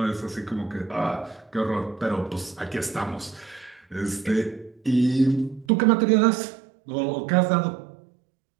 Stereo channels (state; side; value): drops out; left; at 5.7 s